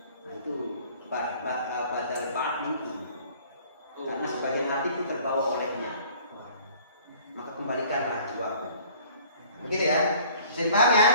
Nah itu badal ba'd min kul. Karena sebagian hati itu terbawa olehnya. Maka kembalikanlah jiwaku. Begitu ya? Bisa dipaham ya?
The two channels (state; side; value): inverted; both; correlation -0.53